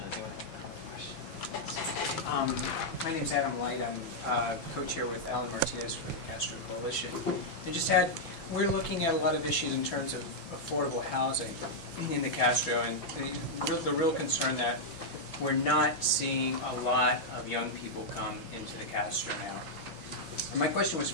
Does anyone have a comment or question? My name's Adam Light. I'm co-chair with Alan Martinez for the Castro Coalition. We're looking at a lot of issues in terms of affordable housing in the Castro, and the real concern that we're not seeing a lot of young people come into the Castro now. And my question was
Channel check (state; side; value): late; right; 6.0 ms